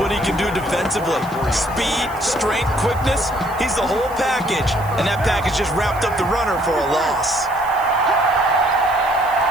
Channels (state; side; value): noise; right; hiss, 20 dB below the sound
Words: he can do defensively. Speed, strength, quickness, he's the whole package. And that package just wrapped up the runner for a loss.